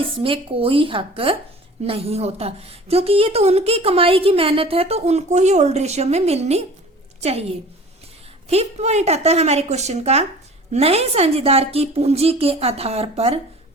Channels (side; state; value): both; normal; correlation 0.44